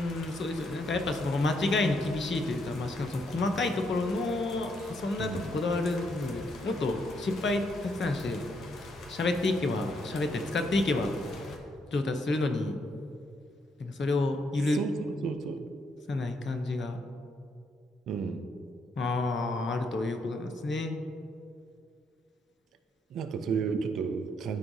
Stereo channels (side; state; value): both; normal; correlation 0.75